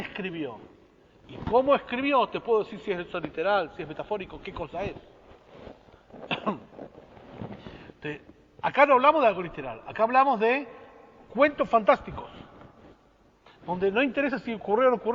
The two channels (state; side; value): identical; both; correlation 1.00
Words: y cómo escribió, te puedo decir si es eso literal, si es metafórico, qué cosa es. Acá no hablamos de algo literal, acá hablamos de cuentos fantásticos, donde no interesa si ocurrió o no